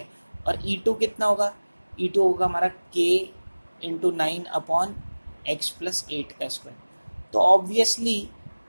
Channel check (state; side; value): inverted; both; correlation -1.00